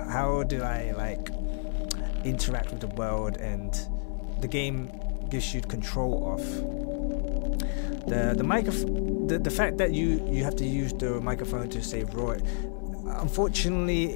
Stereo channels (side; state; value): right; silent; 58 dB below the other